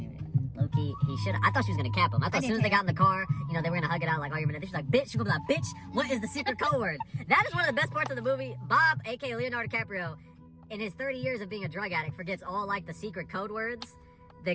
what he looked like. Low-key, he should. I thought she was gonna cap him. I thought as did soon as they too. got in the car, you know, they were gonna hug it out like, oh, you're gonna. She's like, bitch. She's gonna be like, bitch. What is the secret code word? That is one of the best parts of the movie. Bob, aka Leonardo DiCaprio, in his 30 years of being a drug addict, forgets all like the secret code words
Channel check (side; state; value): both; identical; correlation 1.00